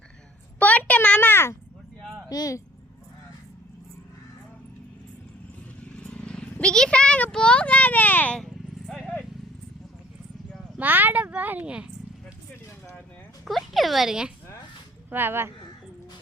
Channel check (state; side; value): normal; both; correlation 0.53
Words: போட்டேன் மாமா. பிகிசா அங்க போகாத, மாட பாருங்க, குடிக்கிற பாருங்க. வா வா,